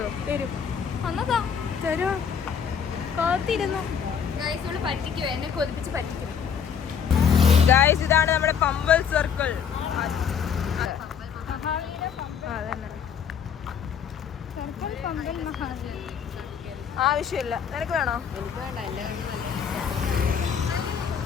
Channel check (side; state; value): right; quieter; 7.3 dB